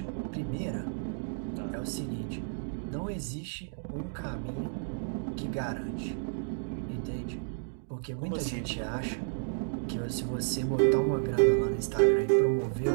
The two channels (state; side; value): silent; left; digital silence